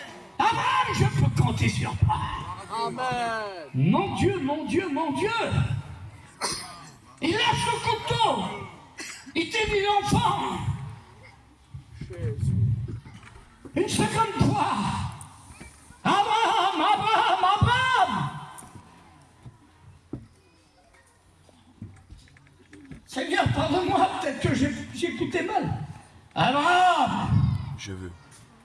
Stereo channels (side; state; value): both; identical; correlation 1.00